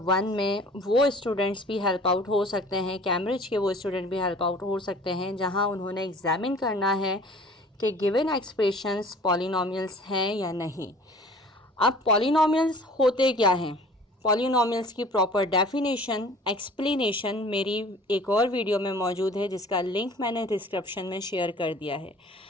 1 में वो स्टूडेंट्स भी हेल्प आउट हो सकते हैं, कैम्ब्रिज के वो स्टूडेंट भी हेल्प आउट हो सकते हैं जहां उन्होंने एग्जामिन करना है कि गिवन एक्सप्रेशंस पॉलिनोमियल्स हैं या नहीं। अब पॉलिनोमियल्स होते क्या हैं, पॉलिनोमियल्स की प्रॉपर डेफिनेशन एक्सप्लेनेशन मेरी एक और वीडियो में मौजूद है जिसका लिंक मैंने डिस्क्रिप्शन में शेयर कर दिया है।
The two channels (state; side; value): normal; both; correlation 0.48